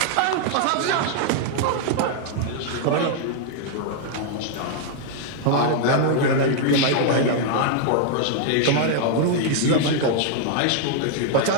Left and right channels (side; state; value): both; different; correlation 0.00